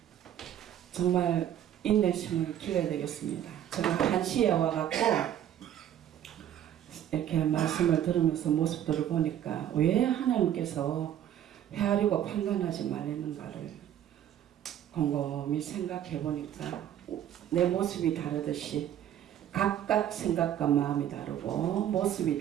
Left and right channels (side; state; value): left; quieter; 10.7 dB